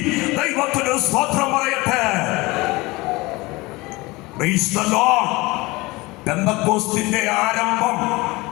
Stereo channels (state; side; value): quieter; right; 22.4 dB